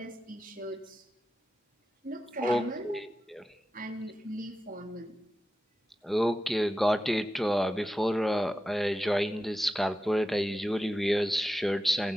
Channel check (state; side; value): normal; both; correlation 0.92